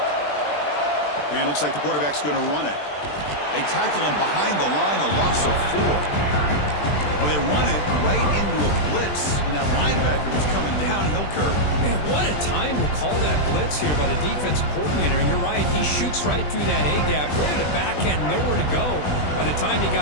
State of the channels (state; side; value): late; right; 20 ms